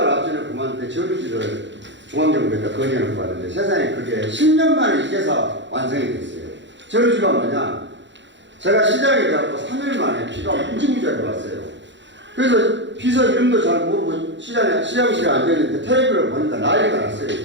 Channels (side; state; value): left; late; 0.53 ms